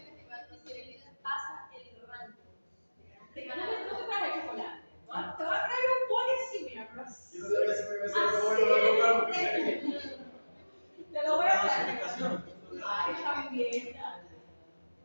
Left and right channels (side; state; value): both; inverted; correlation -1.00